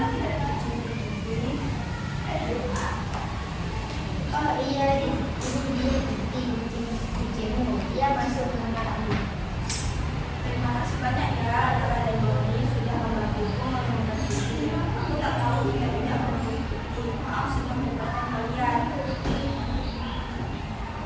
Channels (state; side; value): identical; both; correlation 1.00